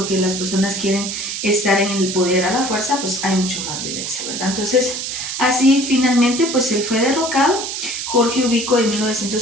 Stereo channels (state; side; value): noise; right; hiss, 5 dB below the sound